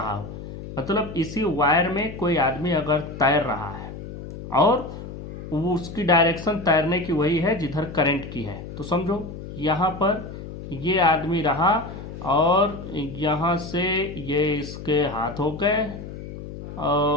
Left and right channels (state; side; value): noise; left; hum, 11 dB below the sound